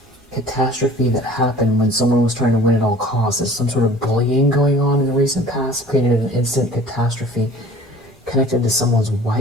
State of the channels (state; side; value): normal; both; correlation 0.47